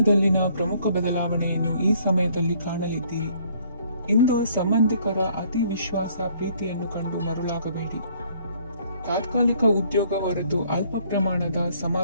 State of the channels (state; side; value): inverted; both; correlation -0.62